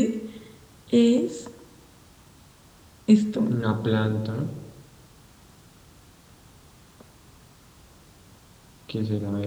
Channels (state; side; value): identical; both; correlation 1.00